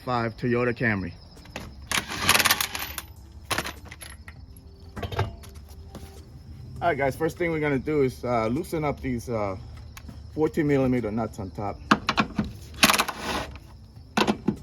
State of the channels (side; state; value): both; identical; correlation 1.00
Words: Toyota Camry. Alright guys, first thing we're going to do is loosen up these 14mm nuts on top.